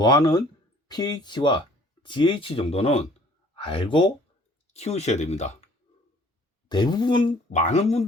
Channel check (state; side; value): normal; both; correlation 0.55